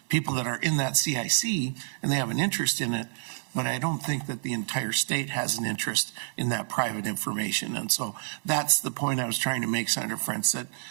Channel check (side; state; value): left; silent; 59 dB below the other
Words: people that are in that CIC, and they have an interest in it. But I don't think that the entire state has an interest in that private information. And so that's the point I was trying to make, Senator Frantz, that